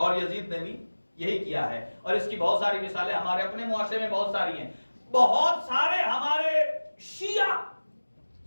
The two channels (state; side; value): inverted; both; correlation -1.00